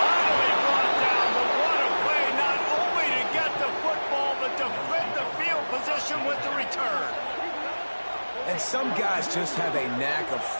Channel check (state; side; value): inverted; both; correlation -1.00